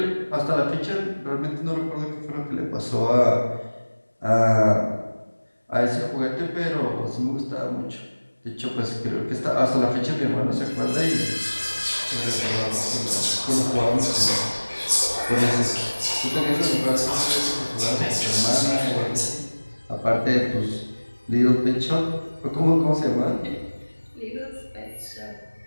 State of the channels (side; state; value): both; inverted; correlation -1.00